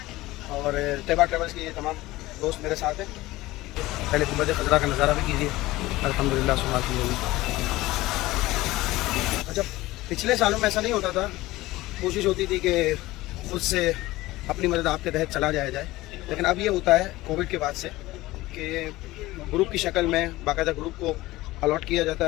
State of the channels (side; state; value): right; quieter; 18.3 dB